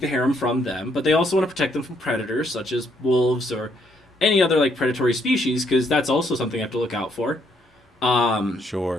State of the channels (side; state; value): both; normal; correlation 0.71